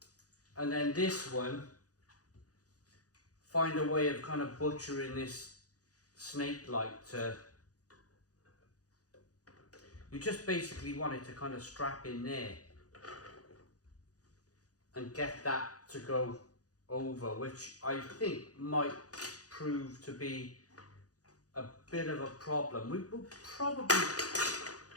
And then this one, find a way of kind of butchering this snake light to, you just basically want it to kind of strap in there and get that to go over, which I think might prove to be a bit of a problem. We will probably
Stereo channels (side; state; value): right; late; 0.67 ms